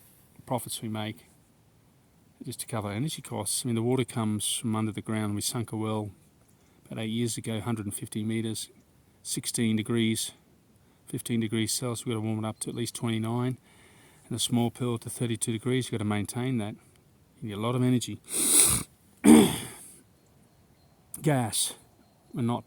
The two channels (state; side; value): identical; both; correlation 1.00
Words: profits we make, just to cover energy costs. I mean, the water comes from under the ground. We sunk a well about 8 years ago, 150 metres, 16 degrees, 15 degrees Celsius. We've got to warm it up to at least 29, and a small pill to 32 degrees. You've got to maintain that. You need a lot of energy. Gas, we're not,